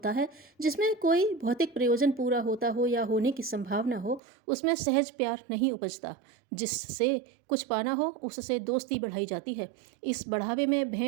है, जिसमें कोई भौतिक प्रयोजन पूरा होता हो या होने की संभावना हो, उसमें सहज प्यार नहीं उपजता। जिससे कुछ पाना हो उससे दोस्ती बढ़ाई जाती है। इस बढ़ावे में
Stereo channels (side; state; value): left; drops out; at 4.2 s